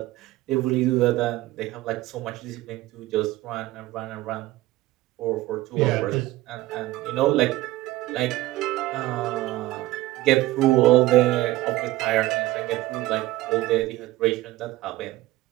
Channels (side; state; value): left; quieter; 17.1 dB